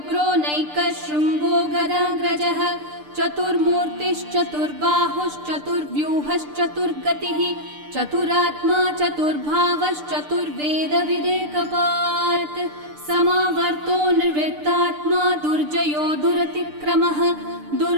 नैकः शृङ्गो गदाग्रजः चतुर्मूर्तिश्चतुर्बाहुश्चतुर्व्यूहश्चतुर्गतिः चतुरात्मा चतुर्भावश्चतुर्वेदविदेकपात् समावर्तो निर्वृत्तात्मा दुर्जयो दुरतिक्रमः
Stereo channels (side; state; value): left; late; 6.7 ms